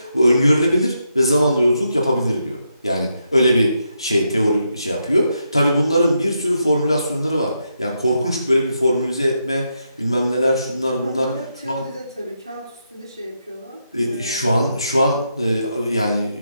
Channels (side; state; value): both; inverted; correlation -0.82